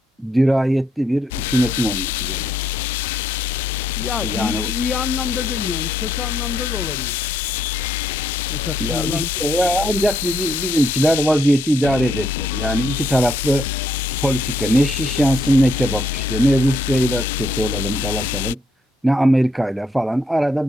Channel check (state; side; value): normal; both; correlation 0.73